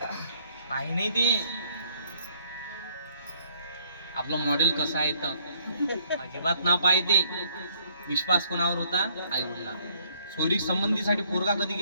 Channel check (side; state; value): both; inverted; correlation -0.65